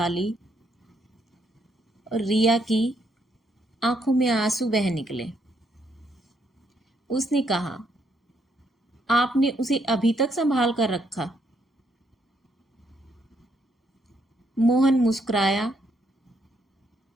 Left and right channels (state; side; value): normal; both; correlation 0.74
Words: और रिया की आंखों में आंसू बह निकले। उसने कहा, आपने उसे अभी तक संभाल कर रखा? मोहन मुस्कुराया,